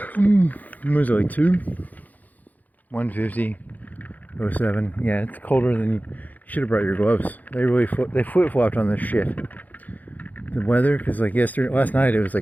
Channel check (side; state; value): right; late; 0.080 ms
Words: was it, like 2? 150.07. Yeah, it's colder than you should have brought your gloves. They really flip-flopped on this shit. The weather, because like last night it was